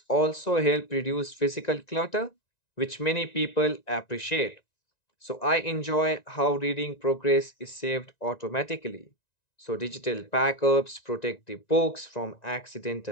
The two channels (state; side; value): late; right; 1.9 ms